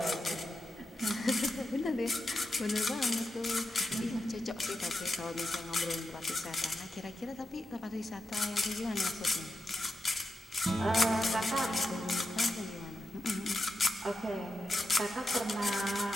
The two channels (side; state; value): both; normal; correlation 0.88